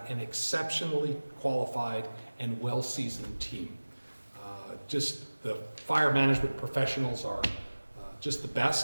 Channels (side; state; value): both; inverted; correlation -1.00